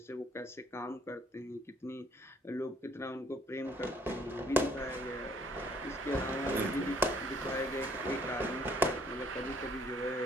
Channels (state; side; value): normal; both; correlation 0.63